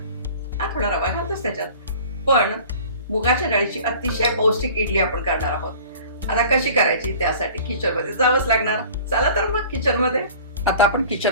हा थोडा रवा घालतोच त्याच्यात, पण मुगाच्या डाळीची अतिशय पौष्टिक इडली आपण करणार आहोत. आता कशी करायची त्यासाठी किचनमध्ये जावंच लागणार. चला तर मग किचनमध्ये. आता आपण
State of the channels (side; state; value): both; inverted; correlation -0.45